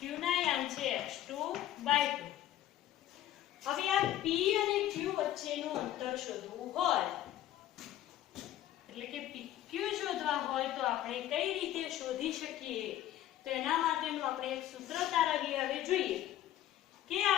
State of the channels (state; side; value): quieter; right; 12.8 dB